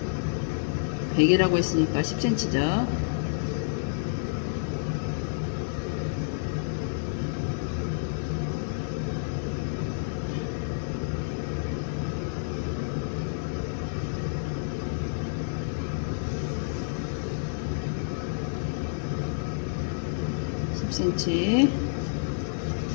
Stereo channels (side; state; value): right; silent; digital silence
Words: 100이라고 했으니까 10cm죠.